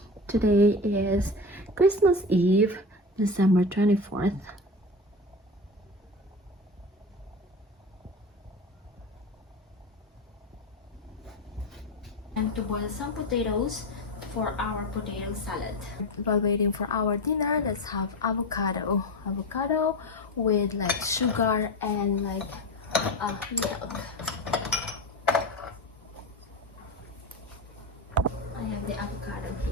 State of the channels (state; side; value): normal; both; correlation 0.24